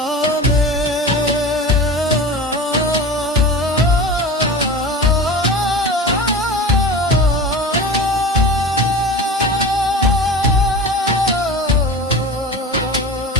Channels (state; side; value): normal; both; correlation 0.32